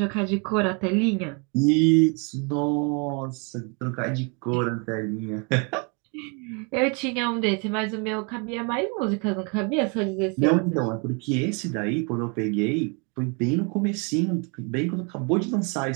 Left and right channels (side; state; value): left; quieter; 34.2 dB